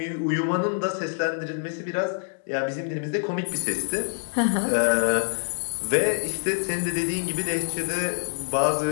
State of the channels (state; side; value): silent; right; 61 dB below the other